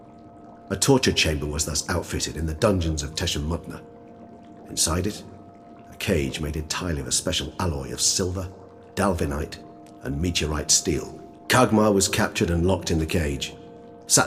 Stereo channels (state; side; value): identical; both; correlation 1.00